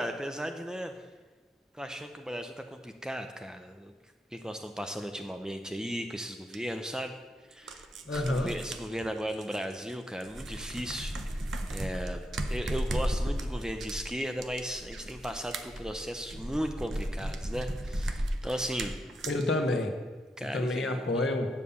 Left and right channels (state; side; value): normal; both; correlation 0.82